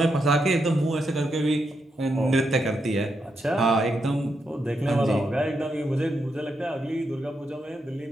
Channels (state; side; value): normal; both; correlation 0.82